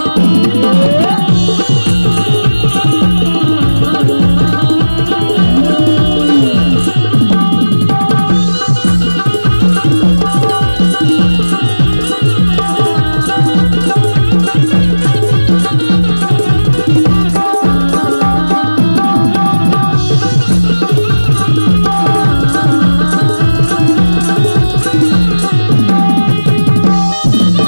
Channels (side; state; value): both; inverted; correlation -1.00